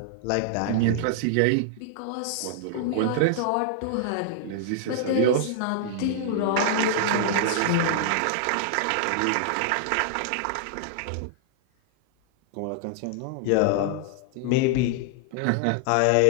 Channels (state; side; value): different; both; correlation -0.01